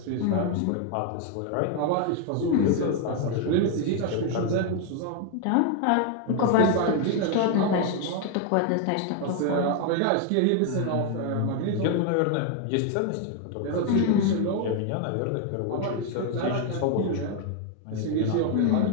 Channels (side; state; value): both; different; correlation 0.01